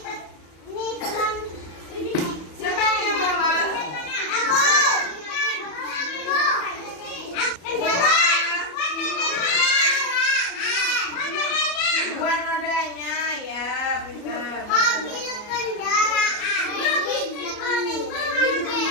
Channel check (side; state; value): right; late; 34 ms